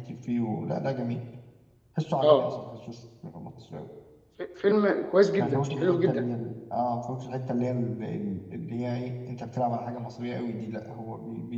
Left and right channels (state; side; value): identical; both; correlation 1.00